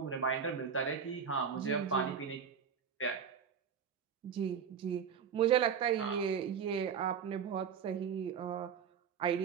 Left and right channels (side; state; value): left; quieter; 7.2 dB